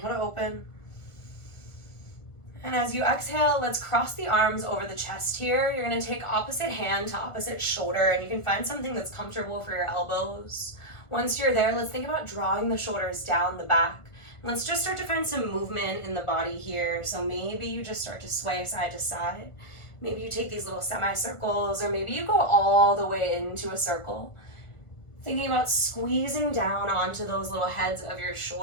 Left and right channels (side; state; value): right; late; 1.4 ms